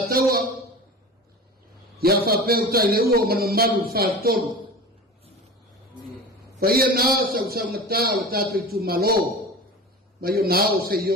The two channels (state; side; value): normal; both; correlation 0.33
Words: taua ya fa peu tai le uo manu malu fa tolu Whaia nā sau ngata o tātou tu malo, mai o nā o se